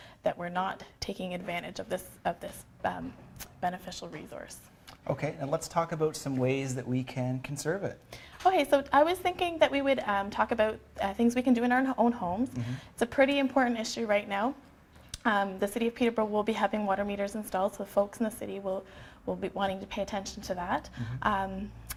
that we're not taking advantage of this beneficial resource. Okay, and let's talk about some ways that we can conserve it. Okay, so I was thinking that we would talk about things we can do in our own homes. It's a pretty important issue right now. The City of Peterborough will be having water meters installed, so folks in the city will be wanting to pay attention to that,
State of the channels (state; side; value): identical; both; correlation 1.00